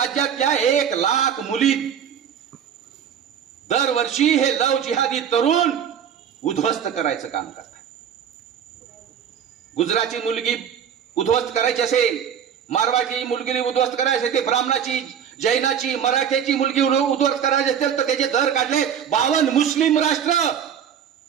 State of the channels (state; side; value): quieter; left; 8.3 dB